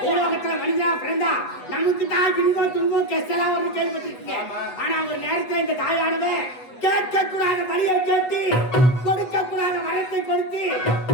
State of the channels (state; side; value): late; right; 8.0 ms